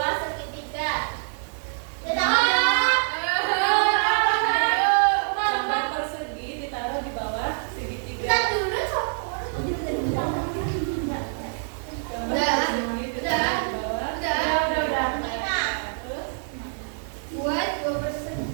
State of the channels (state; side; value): silent; left; digital silence